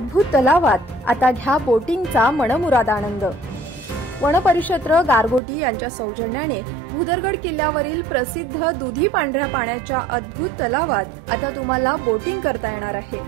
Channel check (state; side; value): drops out; left; at 5.4 s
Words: तलावात आता घ्या बोटिंगचा मनमुराद आनंद। वनपरिक्षेत्र गारगोटी यांच्या सौजन्याने भुदरगड किल्ल्यावरील प्रसिद्ध दुधी पांढऱ्या पाण्याच्या अद्भुत तलावात आता तुम्हाला बोटिंग करता येणार आहे।